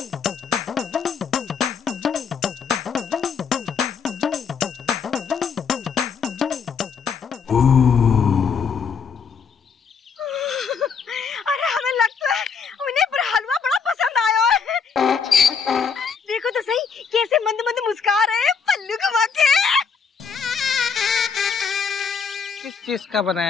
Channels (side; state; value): right; quieter; 6.1 dB